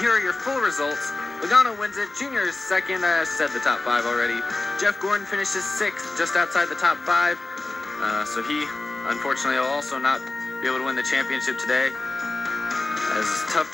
here are your full results. Logano wins it. Junior is second. I said the top five already. Jeff Gordon finishes sixth, just outside the top five. So he, unfortunately, will also not be able to win the championship today. As a tough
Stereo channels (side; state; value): right; quieter; 3.1 dB